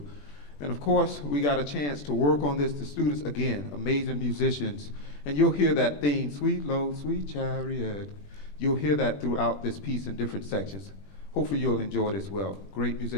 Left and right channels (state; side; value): late; right; 21 ms